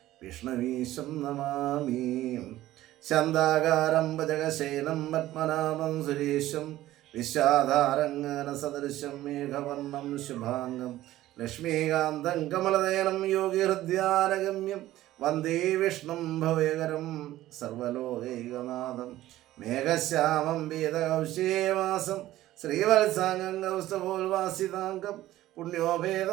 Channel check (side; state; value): left; quieter; 15.0 dB